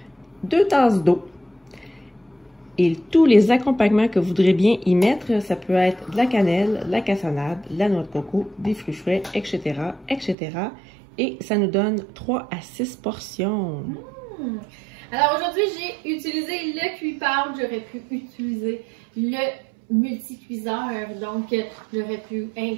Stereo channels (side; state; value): left; drops out; at 10.4 s